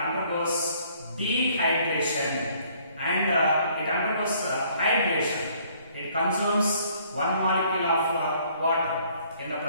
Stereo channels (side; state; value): both; inverted; correlation -0.61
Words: dehydration and it undergoes hydration. It consumes one molecule of water in the